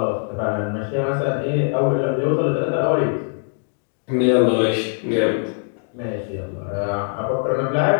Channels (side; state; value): right; silent; 65 dB below the other